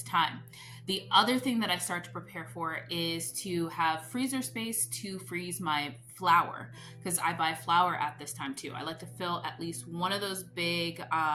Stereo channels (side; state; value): both; identical; correlation 1.00